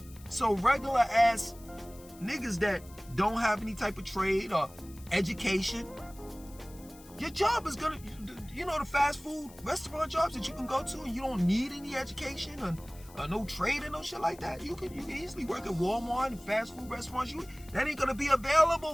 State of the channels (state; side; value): noise; left; hiss, 22 dB below the sound